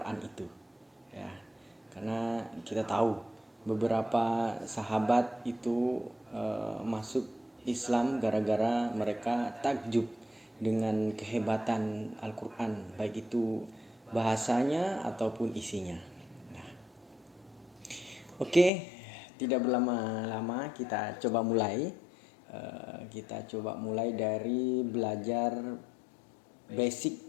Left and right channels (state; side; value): drops out; right; at 18.7 s